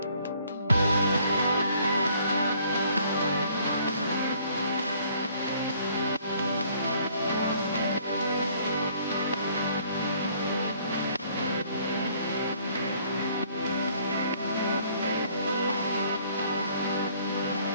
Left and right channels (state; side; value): inverted; both; correlation -0.61